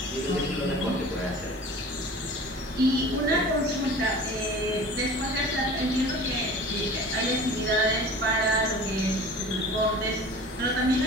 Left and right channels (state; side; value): normal; both; correlation 0.40